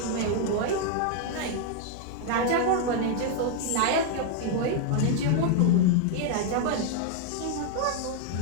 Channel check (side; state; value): both; different; correlation 0.00